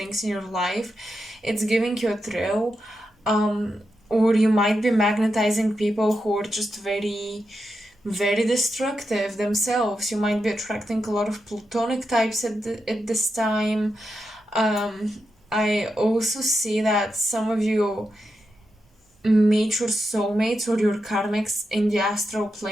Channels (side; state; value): both; normal; correlation 0.87